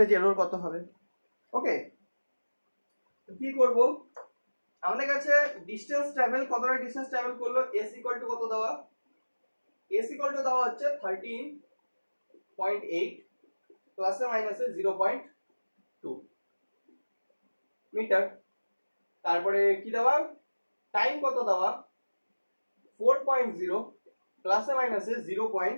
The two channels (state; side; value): inverted; both; correlation -1.00